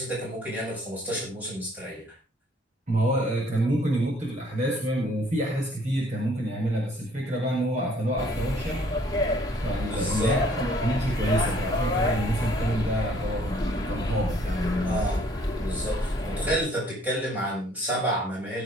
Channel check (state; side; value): normal; both; correlation 0.60